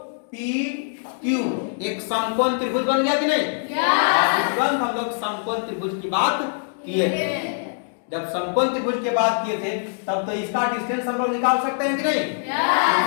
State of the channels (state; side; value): silent; right; digital silence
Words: पी क्यू एक समकोण त्रिभुज बन गया कि नहीं। तुरंत हम लोग समकोण त्रिभुज की बात किए थे। जब समकोण त्रिभुज की बात किए थे तब तो इसका डिस्टेंस हम लोग निकाल सकते हैं कि नहीं।